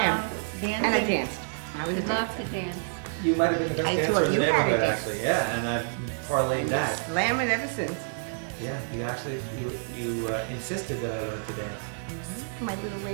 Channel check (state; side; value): silent; left; digital silence